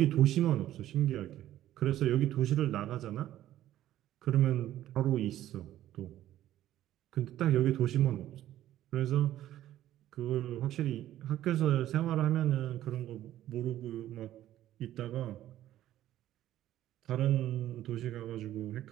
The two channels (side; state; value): left; quieter; 13.1 dB